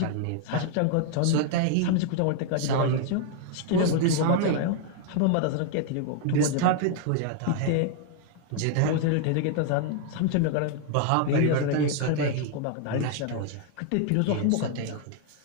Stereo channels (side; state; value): both; different; correlation 0.00